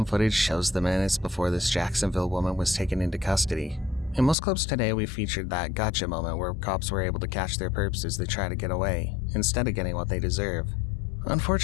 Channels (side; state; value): right; drops out; at 4.4 s